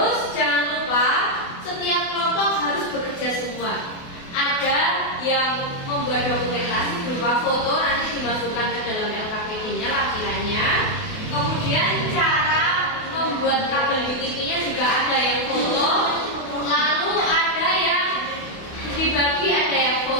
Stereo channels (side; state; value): right; late; 28 ms